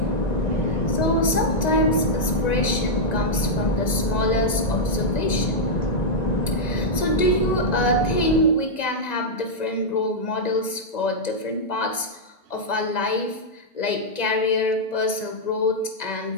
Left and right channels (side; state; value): right; late; 1.9 ms